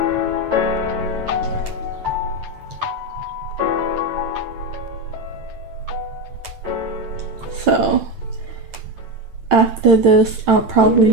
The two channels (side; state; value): left; late; 8.9 ms